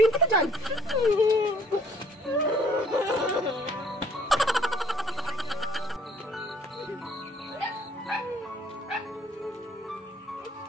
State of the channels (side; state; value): both; normal; correlation 0.60